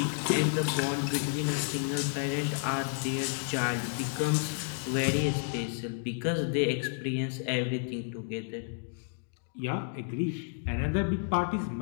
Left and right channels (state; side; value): silent; right; digital silence